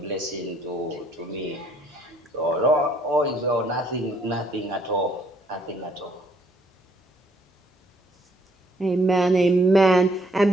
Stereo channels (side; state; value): both; normal; correlation 0.65